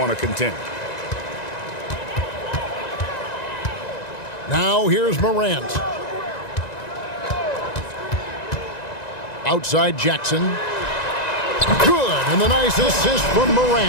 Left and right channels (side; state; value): right; late; 1.9 ms